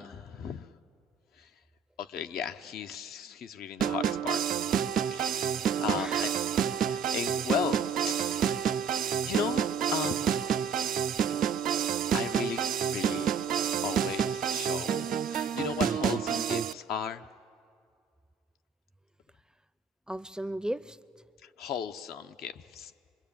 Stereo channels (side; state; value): left; quieter; 4.8 dB